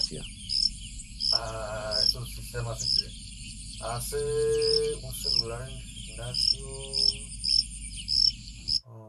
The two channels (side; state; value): both; identical; correlation 1.00